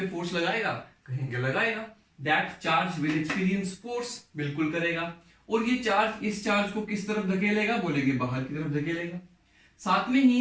फोर्स लगाएगा? कहेंगे लगाएगा। That charge will experience force, बिल्कुल करेगा। और ये चार्ज इस चार्ज को किस तरफ धकेलेगा? बोलेंगे बाहर की तरफ धकेलेगा। साथ में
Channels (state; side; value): identical; both; correlation 1.00